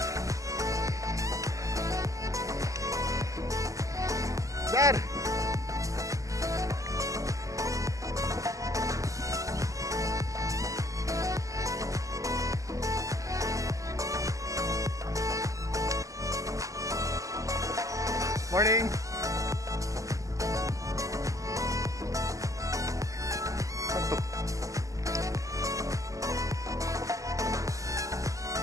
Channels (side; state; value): left; late; 0.16 ms